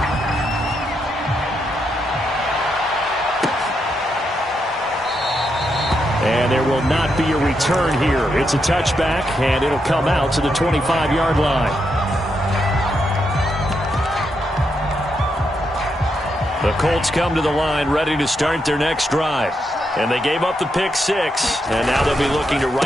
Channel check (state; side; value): normal; both; correlation 0.82